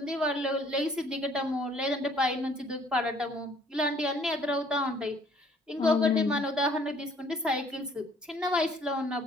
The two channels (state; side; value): normal; both; correlation 0.59